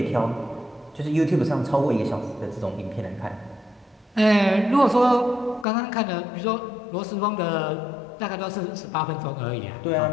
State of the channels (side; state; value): right; drops out; at 5.7 s